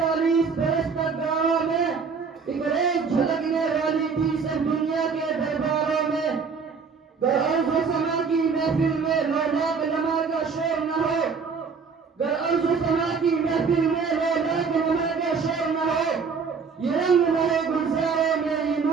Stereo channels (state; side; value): quieter; left; 5.4 dB